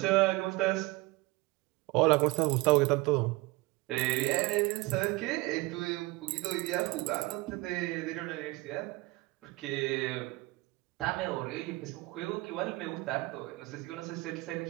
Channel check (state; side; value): quieter; left; 21.9 dB